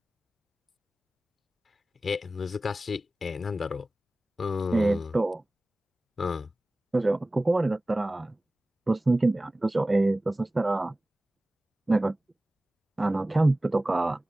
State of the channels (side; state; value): both; normal; correlation 0.97